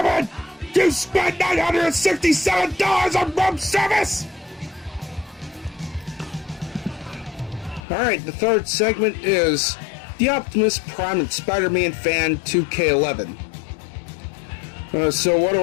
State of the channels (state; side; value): drops out; right; at 7.8 s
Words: You spent $967 on room service! Alright, the third segment is the Optimus Prime and Spider-Man fan 2K11. So what do